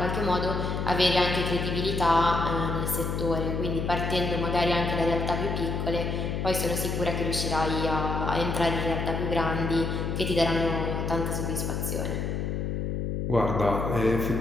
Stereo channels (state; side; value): noise; left; hum, 1 dB below the sound